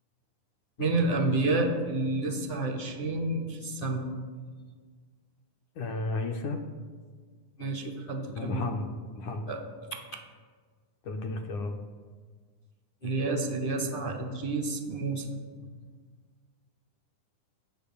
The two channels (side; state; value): right; late; 10 ms